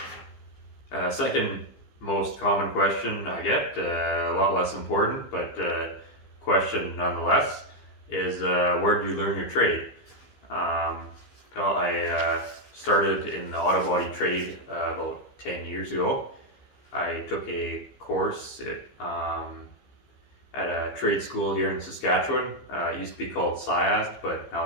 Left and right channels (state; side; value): late; right; 15 ms